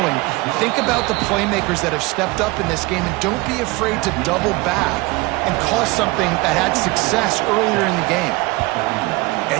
Think about the playmakers that have stepped up in this game, and don't be afraid to double back and call something that had success earlier in the game. And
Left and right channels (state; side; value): quieter; left; 23.0 dB